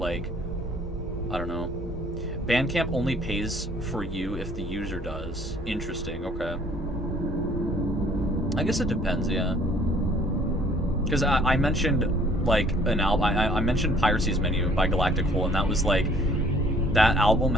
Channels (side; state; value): both; normal; correlation 0.57